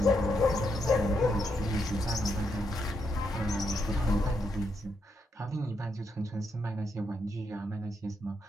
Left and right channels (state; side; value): normal; both; correlation 0.79